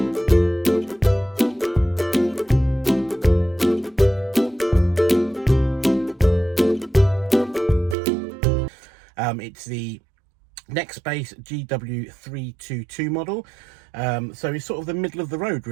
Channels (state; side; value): drops out; left; at 8.0 s